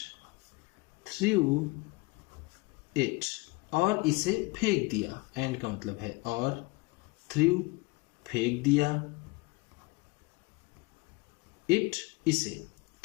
through it, और इसे फेंक दिया। एंड का मतलब है और, थ्रू फेंक दिया, इट इसे।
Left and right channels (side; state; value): right; quieter; 24.6 dB